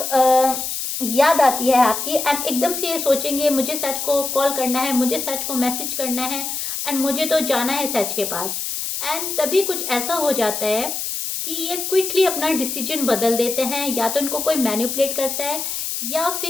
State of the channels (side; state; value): left; noise; hiss, 4 dB below the sound